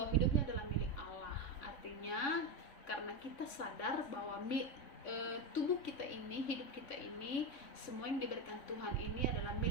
hidupnya adalah milik Allah. Artinya karena kita sadar bahwa tubuh kita ini, hidup kita ini, semua yang diberikan Tuhan ini adalah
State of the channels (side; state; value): right; late; 3.6 ms